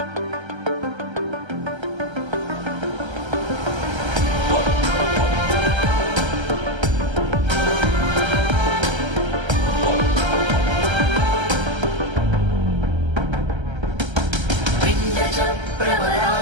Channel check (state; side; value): late; left; 1.3 ms